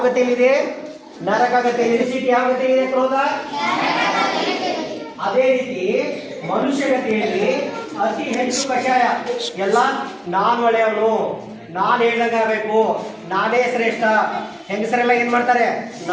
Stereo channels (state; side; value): identical; both; correlation 1.00